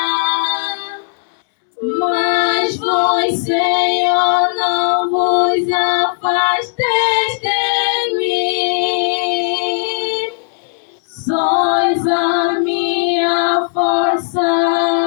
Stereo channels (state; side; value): silent; right; digital silence